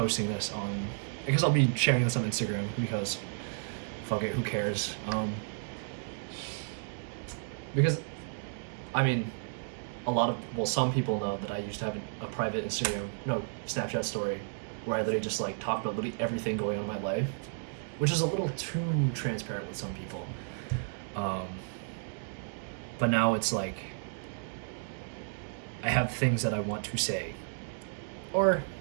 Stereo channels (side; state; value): left; silent; digital silence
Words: this on, I guess I'll be sharing this on Instagram, because fuck it, who cares? Because I mean, some people know that I used to have a private Snapchat story where I literally just like talked about literally everything going on in my life, which is a little too transparent with some people. But now it's like I have things that I want to say, or,